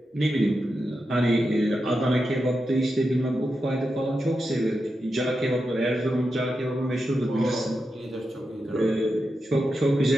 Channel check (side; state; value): both; normal; correlation 0.88